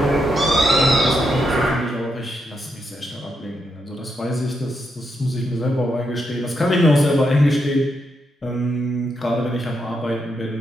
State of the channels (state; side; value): normal; both; correlation 0.81